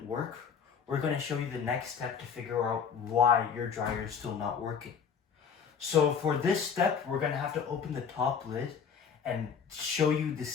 work, we're going to show you the next step to figure out why your dryer is still not working. So for this step, we're going to have to open the top lid and show you the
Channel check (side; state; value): right; quieter; 6.8 dB